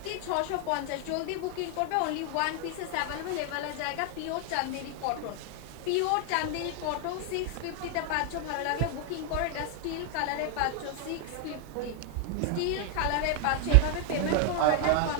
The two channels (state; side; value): different; both; correlation 0.00